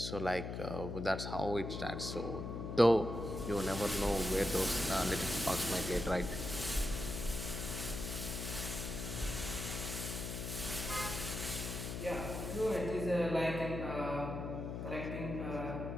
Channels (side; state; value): left; noise; hum, 5 dB below the sound